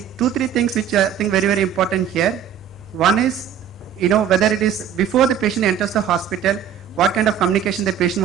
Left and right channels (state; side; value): quieter; left; 8.9 dB